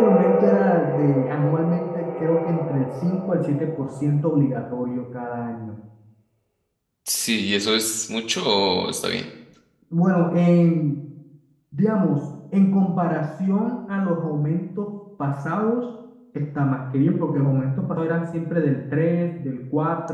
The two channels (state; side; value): identical; both; correlation 1.00